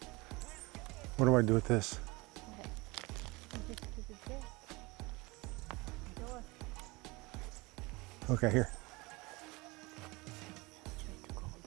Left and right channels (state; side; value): quieter; left; 24.1 dB